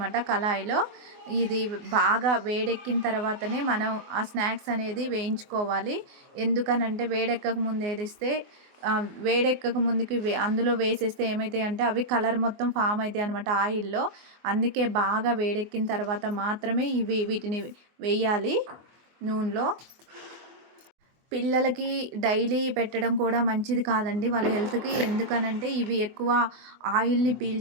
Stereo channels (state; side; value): late; left; 24 ms